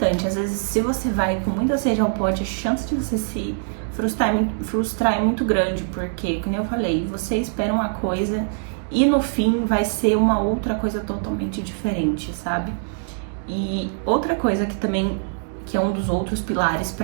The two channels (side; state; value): left; silent; digital silence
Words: Às vezes, se você vai com muita sede ao pote, a chance de você se frustrar é muito grande, porque, como eu falei, você espera uma coisa e no fim vai ser uma outra coisa totalmente diferente, sabe? E outra coisa que também, que é um dos outros pilares